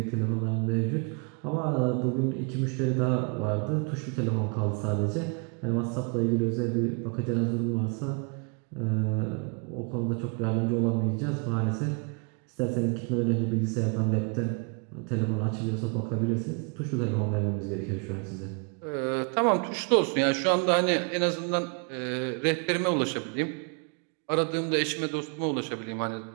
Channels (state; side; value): quieter; left; 36.9 dB